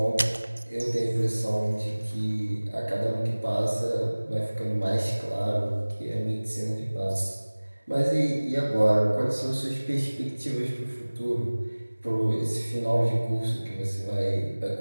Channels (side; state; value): both; inverted; correlation -1.00